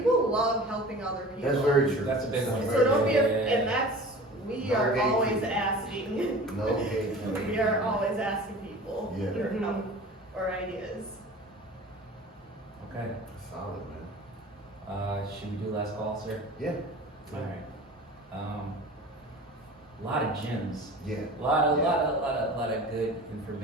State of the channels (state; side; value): normal; both; correlation 0.40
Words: love helping other people. That's very true. That's a big one. So don't be, Yeah. and that's, we No are gatekeeping. always asking. No gatekeeping. We are always asking people Yeah. for help or ideas. Okay. Solid, man. Should we do last call, sir? Yeah. All right. A lot of gems. Yeah. A lot of good